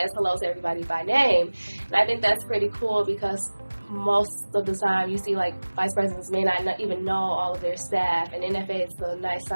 hello to everybody by name. And I think that's pretty cool because most of the time you see like vice presidents may not even know all of their staff, and NFA is a nice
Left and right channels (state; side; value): inverted; both; correlation -1.00